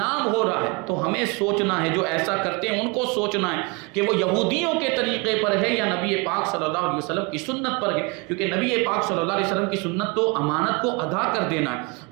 ہو رہا ہے۔ تو ہمیں سوچنا ہے، جو ایسا کرتے ہیں ان کو سوچنا ہے کہ وہ یہودیوں کے طریقے پر ہے یا نبی پاک صلی اللہ علیہ وسلم کی سنت پر ہے، کیونکہ نبی پاک صلی اللہ علیہ وسلم کی سنت تو امانت کو ادا کر دینا ہے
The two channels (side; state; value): left; quieter; 28.9 dB